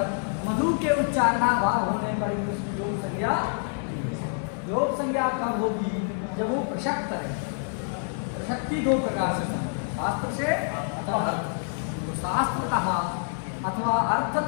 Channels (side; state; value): right; silent; 60 dB below the other